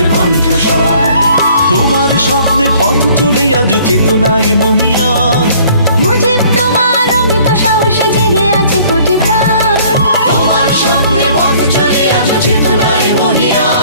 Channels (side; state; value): both; inverted; correlation -0.56